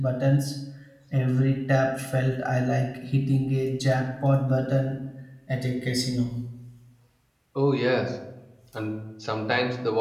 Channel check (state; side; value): identical; both; correlation 1.00